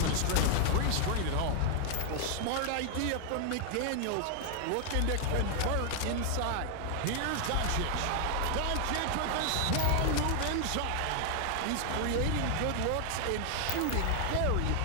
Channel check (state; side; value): different; both; correlation 0.00